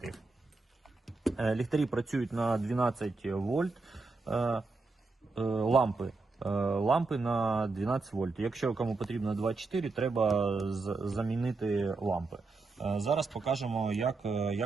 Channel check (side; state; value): left; quieter; 3.8 dB